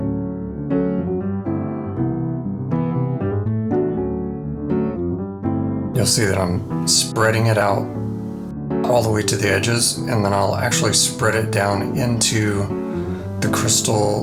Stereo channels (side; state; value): both; identical; correlation 1.00